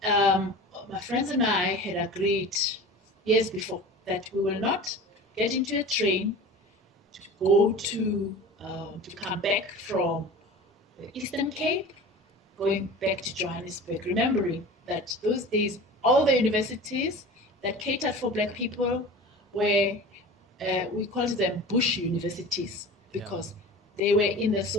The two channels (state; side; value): normal; both; correlation 0.36